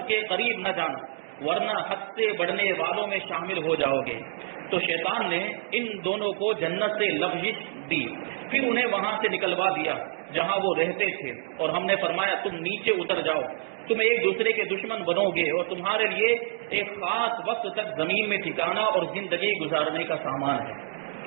کے قریب نہ جانا ورنہ حد سے بڑھنے والوں میں شامل ہو جاؤ گے۔ تو شیطان نے ان دونوں کو جنت سے لغزش دی، پھر انہیں وہاں سے نکلوا دیا جہاں وہ رہتے تھے، اور ہم نے فرمایا تم نیچے اتر جاؤ، تم ایک دوسرے کے دشمن بنو گے اور تمہارے لیے ایک خاص وقت تک زمین میں ٹھکانا اور زندگی گزارنے کا سامان ہے۔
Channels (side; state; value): left; silent; digital silence